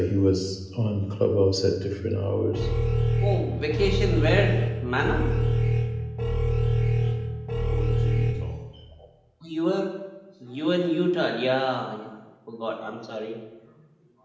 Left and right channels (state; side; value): identical; both; correlation 1.00